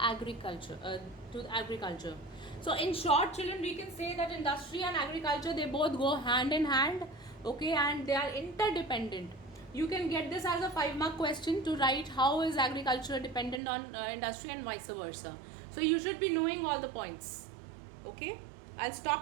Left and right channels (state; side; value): drops out; left; at 13.6 s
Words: So in short, children, we can say that industry and agriculture, they both go hand in hand, okay, and they are interdependent. You can get this as a 5-mark question to write how is agriculture dependent on industry and vice versa. So you should be knowing all the points. Okay, I'll